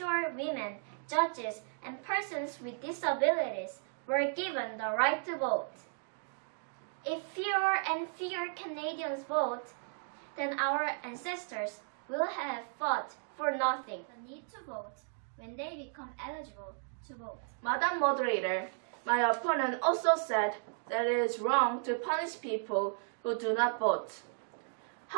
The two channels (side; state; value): left; silent; digital silence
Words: women, judges, and persons with disabilities were given the right to vote. If fewer and fewer Canadians vote, then our ancestors will have fought for nothing. The need to vote when they become eligible to vote. Madam Moderator, my opponent also said that it is wrong to punish people who do not vote.